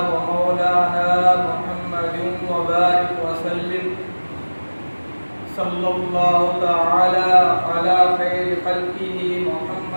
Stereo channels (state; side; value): inverted; both; correlation -1.00